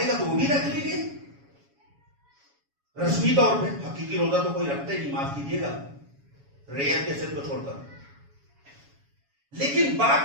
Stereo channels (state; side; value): late; left; 7.2 ms